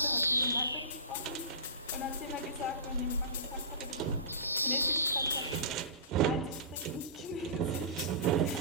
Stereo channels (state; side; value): inverted; both; correlation -0.30